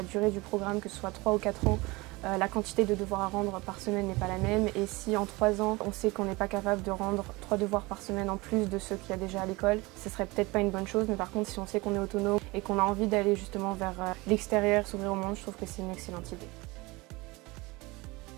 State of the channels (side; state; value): left; quieter; 23.2 dB